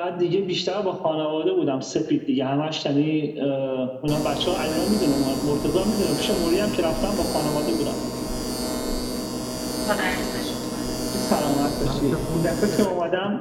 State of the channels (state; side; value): identical; both; correlation 1.00